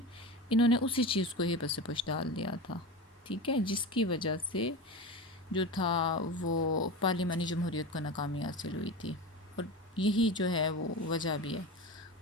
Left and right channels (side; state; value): both; normal; correlation 0.26